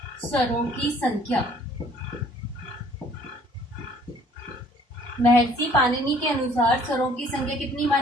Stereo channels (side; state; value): both; normal; correlation 0.57